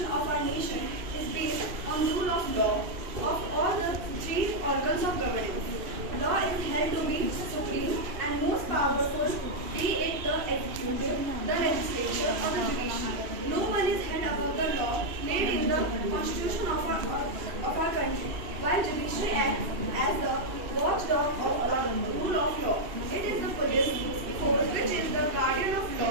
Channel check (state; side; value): late; left; 2.7 ms